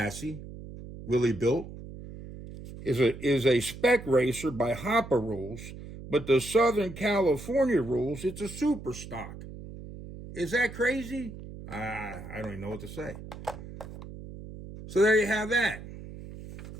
Willie built, is a spec racer by Hopper rules, but the Southern California rules, it's a super stock. Is that crazy? I don't even know what to say. So there you have that.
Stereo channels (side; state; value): right; noise; hum, 13 dB below the sound